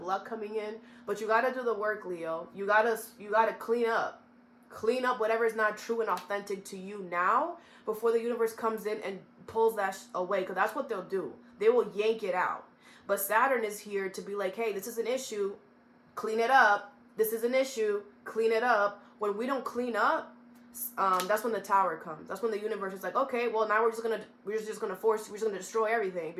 luck coming in, but you got to do the work, Leo. You got to clean up. Clean up whatever is not true and authentic to you now before the universe comes in and pulls that away, because that's what they'll do. They will yank it out. But Saturn is here to be like, hey, this is an issue. Clean it up. This is an issue. Clean it up. When we don't clean up, that's when the tower comes. That's when the universe is like, okay, well, now we're just gonna destroy everything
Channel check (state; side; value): identical; both; correlation 1.00